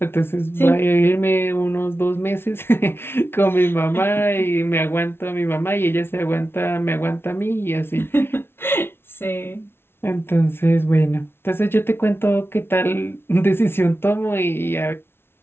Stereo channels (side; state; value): right; late; 0.12 ms